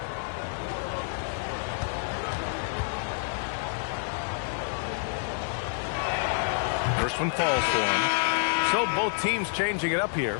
First one falls for him. So both teams changing it up here.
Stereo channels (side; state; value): right; silent; digital silence